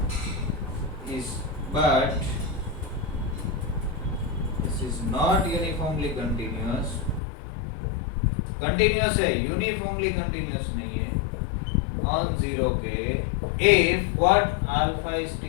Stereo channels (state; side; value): drops out; right; at 7.2 s